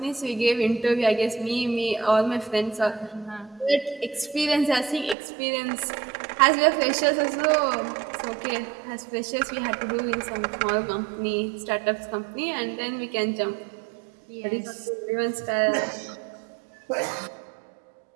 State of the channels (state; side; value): drops out; left; at 5.2 s